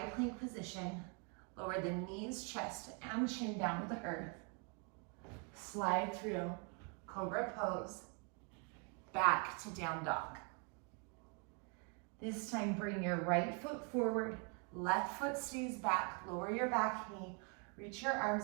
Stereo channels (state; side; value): quieter; left; 36.7 dB